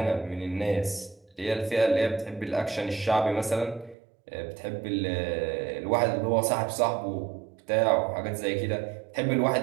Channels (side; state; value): left; drops out; at 4.0 s